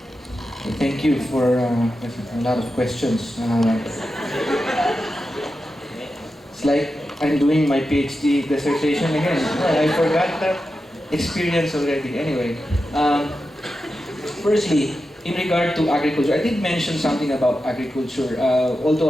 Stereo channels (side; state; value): both; normal; correlation 0.90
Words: Thank you for a lot of questions. It's like I'm doing my PhD dissertation again. I forgot that experience already. Anyway, firstly, in regard to agriculture, I did mention something about agriculture. Although